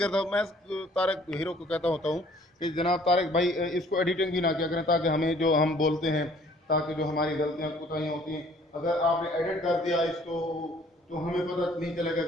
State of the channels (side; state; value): both; normal; correlation 0.57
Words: मैं तारक हीरो को कहता होता हूँ कि जनाब तारक भाई इसको एडिटिंग भी ना किया करें, ताकि हमें जो हम बोलते हैं, ताकि जो हमारी गलतियाँ कोताहियाँ होती हैं, अगर आपने एडिट कर दिया इसको तो हमें पता नहीं चलेगा